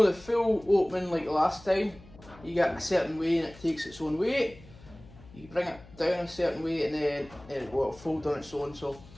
the full opening like the last time. You get a certain way and it takes its own weight. You bring it down a certain way and then it will fold on its own, so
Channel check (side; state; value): left; noise; hum, 21 dB below the sound